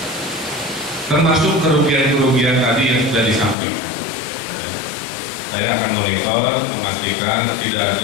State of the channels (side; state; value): right; drops out; at 3.6 s